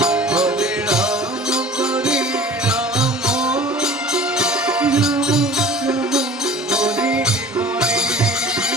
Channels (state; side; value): normal; both; correlation 0.43